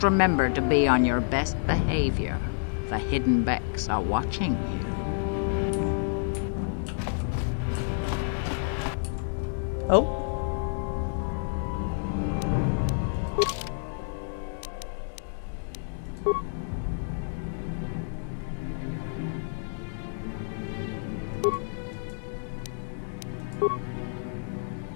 remember to be on your best behavior. The hidden Beks are watching you. Oh.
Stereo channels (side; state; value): right; silent; digital silence